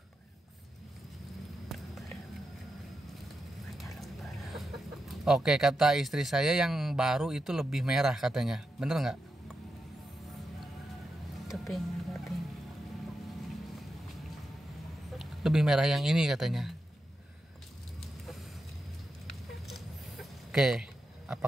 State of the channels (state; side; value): normal; both; correlation 0.87